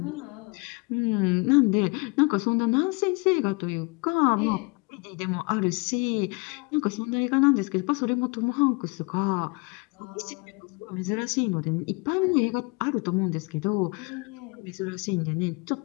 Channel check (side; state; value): right; quieter; 29.6 dB